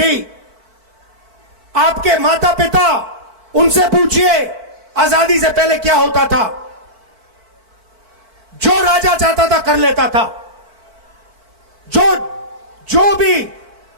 आपके माता पिता, उनसे पूछिए आजादी से पहले क्या होता था। जो राजा चाहता था कर लेता था, जो भी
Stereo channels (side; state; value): left; late; 4.5 ms